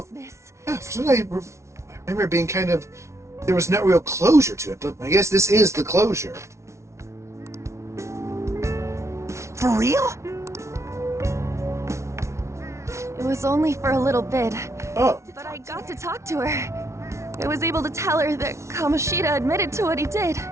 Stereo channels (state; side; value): late; left; 0.13 ms